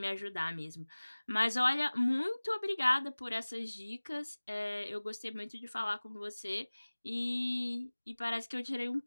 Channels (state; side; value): inverted; both; correlation -1.00